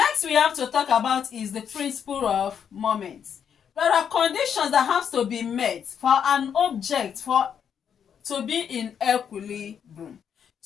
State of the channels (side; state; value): right; quieter; 8.0 dB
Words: we have to talk about is the principle of moment. There are conditions that have to be met for an object to be in equilibrium,